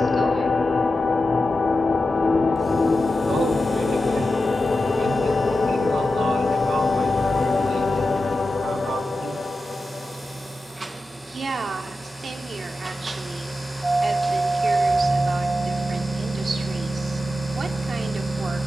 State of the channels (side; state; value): both; normal; correlation 0.91